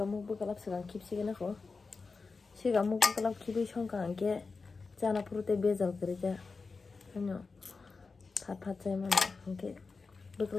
bu kalap sanang kipsi gena ko sigamuk bu kalap kibi songka angke jana purute bezal kerja ano phat chay man angke bu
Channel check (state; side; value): quieter; right; 4.4 dB